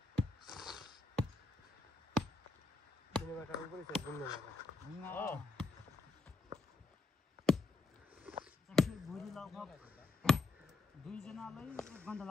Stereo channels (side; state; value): right; quieter; 3.5 dB